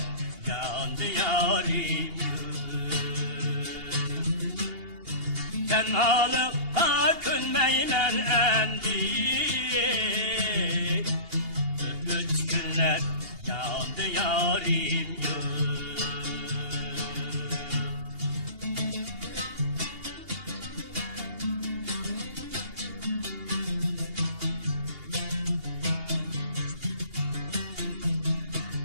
yandı yarim tenhalıkta könmeyim elendi üç günler yandı yarim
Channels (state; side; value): late; left; 2.8 ms